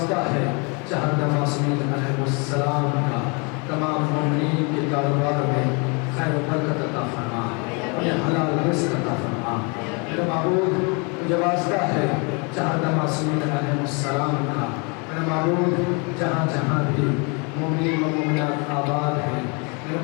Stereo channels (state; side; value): quieter; right; 32.5 dB